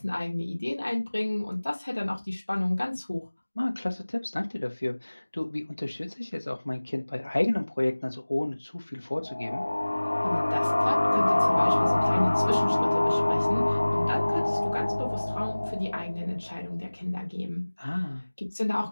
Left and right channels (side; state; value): both; inverted; correlation -1.00